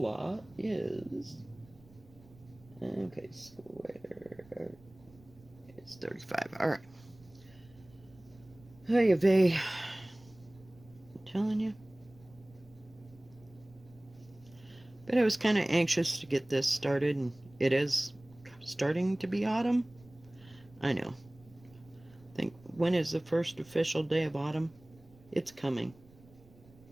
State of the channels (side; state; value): right; noise; rumble, 25 dB below the sound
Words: is, okay, square is 35. All right. Hey, Vay. I'm telling you. But I was kind of anxious to get this started, and it is starting to be autumn. I know. Think, when is the first official day of autumn? It's coming.